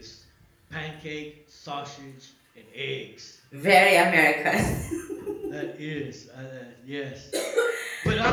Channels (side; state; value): both; identical; correlation 1.00